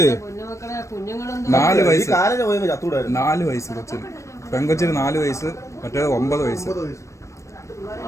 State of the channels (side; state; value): right; late; 0.15 ms